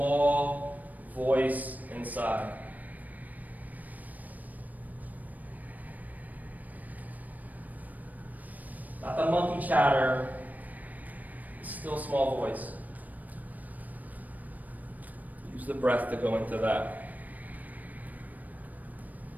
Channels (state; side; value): late; left; 0.080 ms